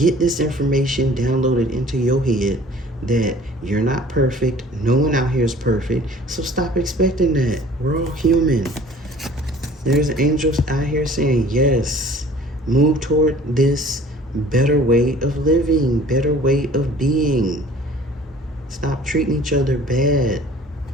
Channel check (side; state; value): both; normal; correlation 0.50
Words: this information downloaded into your head that you're not perfect. No one out here is perfect. So stop expecting that. We're all human. There's angels out here saying, yes, move toward this better way of living, better way of being. Stop treating each other bad.